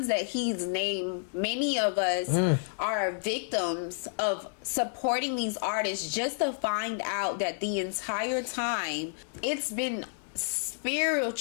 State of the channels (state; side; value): silent; right; 58 dB below the other